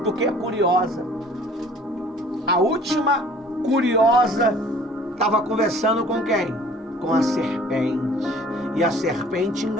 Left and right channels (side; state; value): both; normal; correlation 0.52